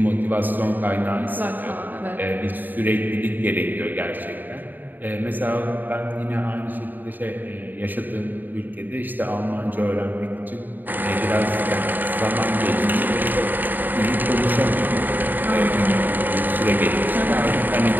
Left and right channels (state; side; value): late; left; 0.089 ms